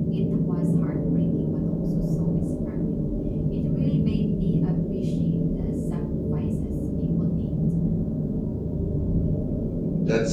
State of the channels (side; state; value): both; identical; correlation 1.00